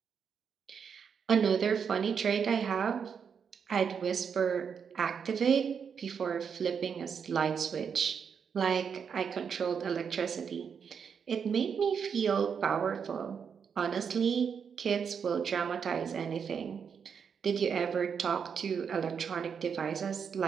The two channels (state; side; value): quieter; left; 6.8 dB